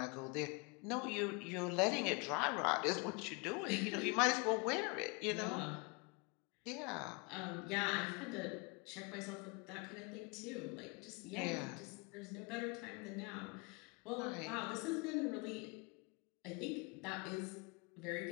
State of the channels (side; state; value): right; quieter; 29.6 dB